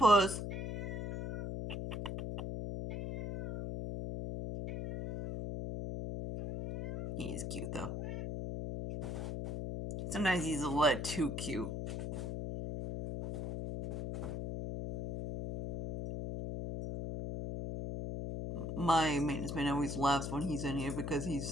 He is cute though. Sometimes he's a little too cute. My maintenance man always laughs when he's in here because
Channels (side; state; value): left; noise; hum, 4 dB below the sound